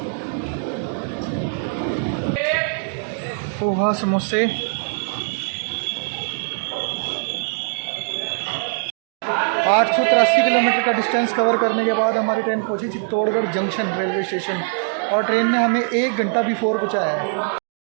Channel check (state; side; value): silent; left; digital silence